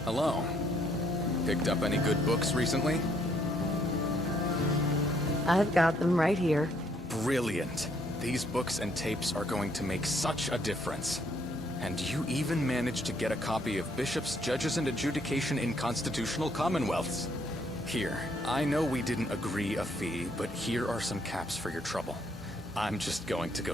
Hello. Picked up any good books recently? I've got them right here. Brilliant. These books and tapes are going to make such a difference. And you even managed to get a copy of Bishops, Judges, and Adjudication in Constitutional Commonwealths. Here, I know we didn't agree a fee, but here are some caps for your trouble. I'm just going to go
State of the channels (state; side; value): normal; both; correlation 0.69